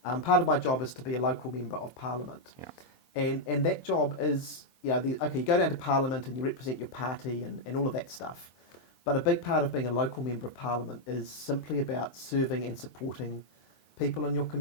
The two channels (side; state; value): right; late; 23 ms